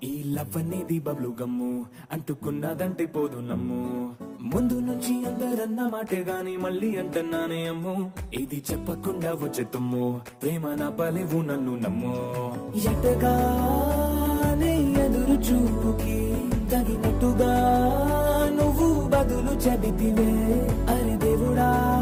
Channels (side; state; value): both; identical; correlation 1.00